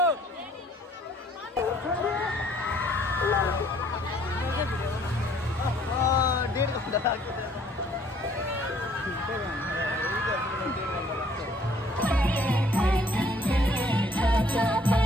डेढ घन्टा लाग्छ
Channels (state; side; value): normal; both; correlation 0.60